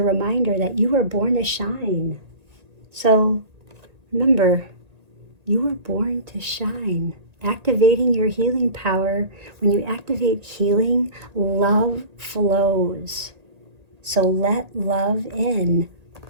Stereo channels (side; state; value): left; late; 1.8 ms